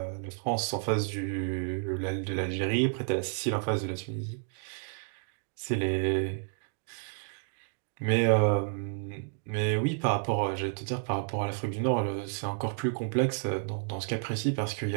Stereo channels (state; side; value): silent; left; digital silence